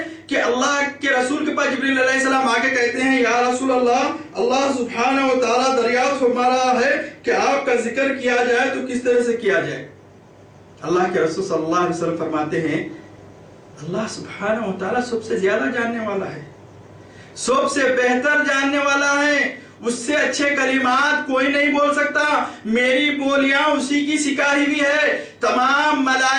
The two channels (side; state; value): both; identical; correlation 1.00